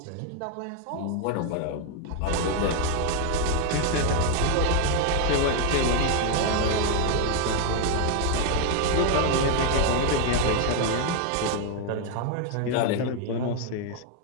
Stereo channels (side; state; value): both; different; correlation 0.01